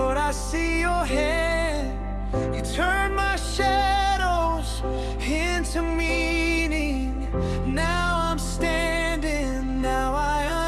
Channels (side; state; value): both; identical; correlation 1.00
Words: I see your hand. You turn my shadows into meaning. Now I'm standing, now I